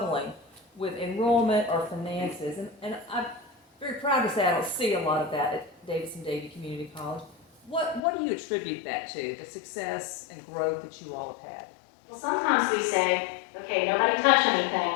with enrollment or finances. And I'm very proud to say I don't see a lot of that at Davidson-Davie Community College. What do you attribute that to, the success and growth that you all have had? Well, sometimes we say, okay, nobody touch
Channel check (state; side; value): drops out; right; at 8.0 s